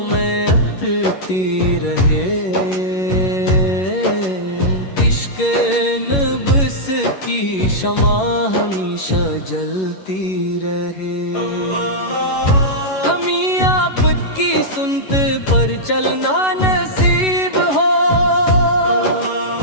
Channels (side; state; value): right; late; 11 ms